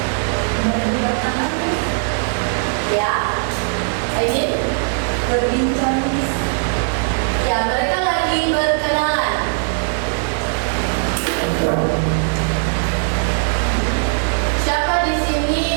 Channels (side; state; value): left; silent; 63 dB below the other